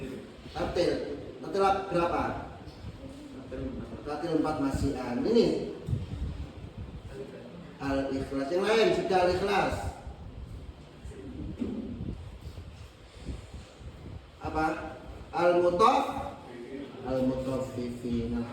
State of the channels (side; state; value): both; identical; correlation 1.00